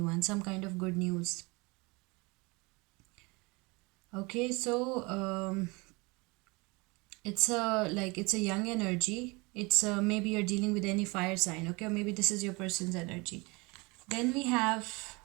some kind of good news. Okay, so it's a young energy. It's maybe you're dealing with any fire sign. Okay, or maybe this is your person's energy. Then we have,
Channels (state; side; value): quieter; left; 26.3 dB